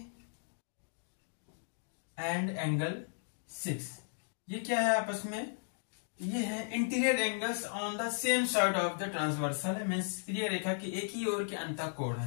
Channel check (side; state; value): right; silent; digital silence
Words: एंड एंगल 6, ये क्या है आपस में, ये है interior angles on the same side of the transversal है, मींस तिर्यक रेखा के एक ही ओर के अंतःकोण